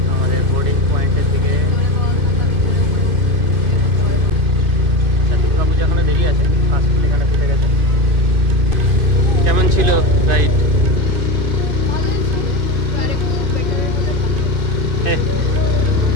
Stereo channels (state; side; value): late; left; 2.7 ms